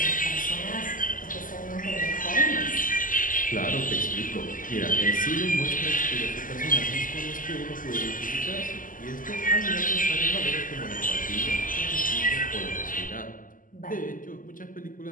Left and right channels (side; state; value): right; late; 0.39 ms